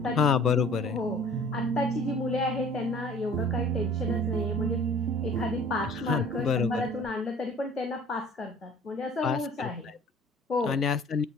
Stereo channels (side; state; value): both; normal; correlation 0.50